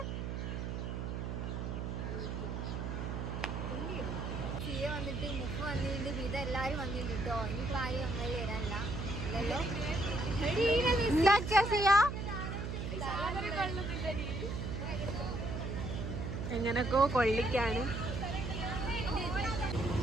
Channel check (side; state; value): right; noise; hum, 3 dB below the sound